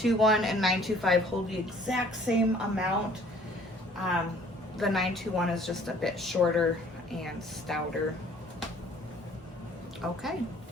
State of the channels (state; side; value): normal; both; correlation 0.56